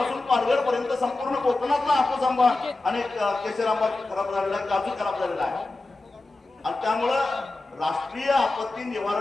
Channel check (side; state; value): right; quieter; 3.1 dB